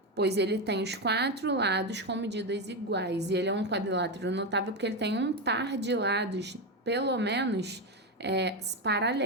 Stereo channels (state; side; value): normal; both; correlation 0.11